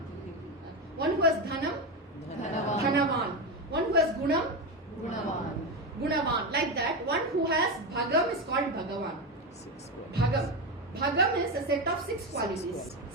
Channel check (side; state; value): both; normal; correlation 0.15